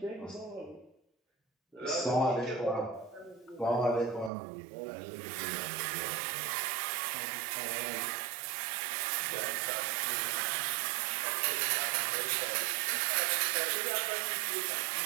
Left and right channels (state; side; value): drops out; left; at 4.3 s